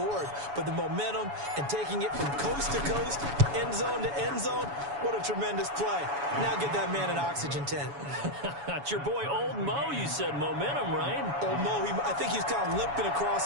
but the momentum and taking it from coast to coast, end zone to end zone. What a tremendous play. Now get that man an oxygen tent. It's your boy Old Mo, you said momentum, right? Old Mo, I think he's kind of limping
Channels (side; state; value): left; late; 7.1 ms